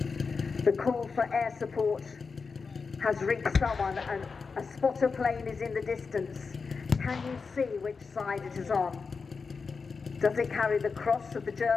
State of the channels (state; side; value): quieter; right; 4.9 dB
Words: The call for air support has reached someone, and a spotter plane is in the distance. Can you see which side it is on? Does it carry the cross of the